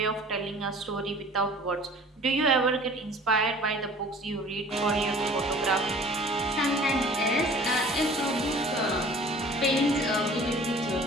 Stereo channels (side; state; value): both; normal; correlation 0.48